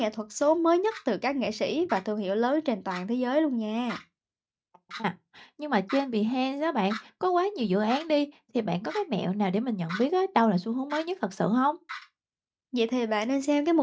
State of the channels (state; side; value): identical; both; correlation 1.00